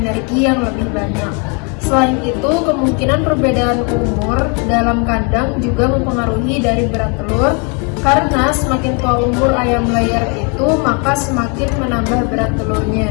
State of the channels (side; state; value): right; quieter; 35.3 dB